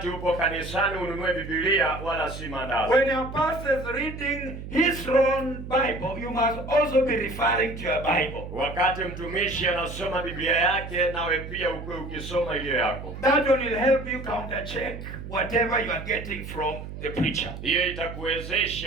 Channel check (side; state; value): right; noise; hum, 10 dB below the sound